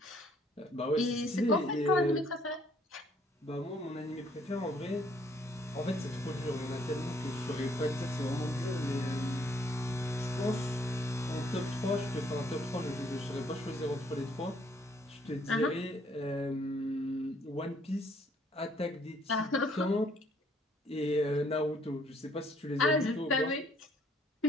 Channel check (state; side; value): normal; both; correlation 0.64